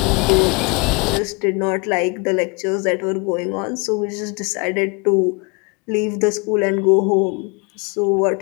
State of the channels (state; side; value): quieter; right; 30.3 dB